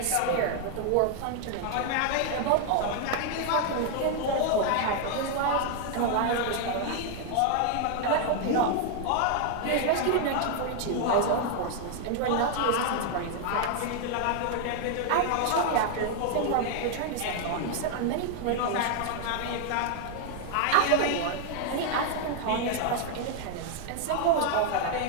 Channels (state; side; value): different; both; correlation 0.00